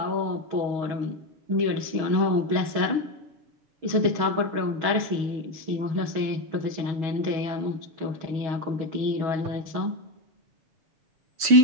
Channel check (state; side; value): late; left; 6.3 ms